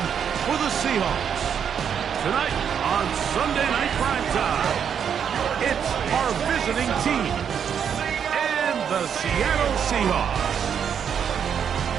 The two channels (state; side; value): quieter; left; 7.8 dB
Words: for the Seahawks. Tonight on Sunday Night Primetime, it's our visiting team and the Seattle Seahawks.